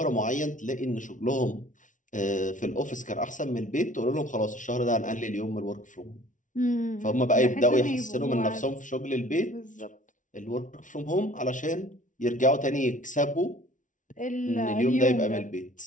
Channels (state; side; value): late; right; 0.37 ms